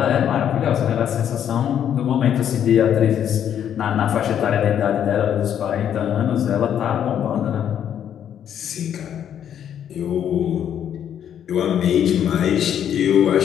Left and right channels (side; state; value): right; quieter; 9.4 dB